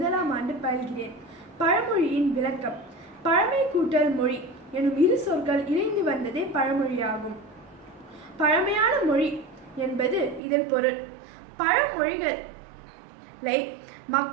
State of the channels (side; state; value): left; drops out; at 10.4 s